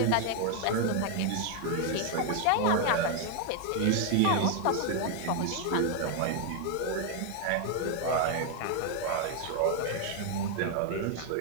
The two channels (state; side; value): different; both; correlation 0.01